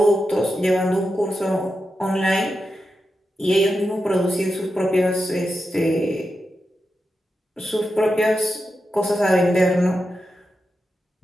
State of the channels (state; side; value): normal; both; correlation 0.89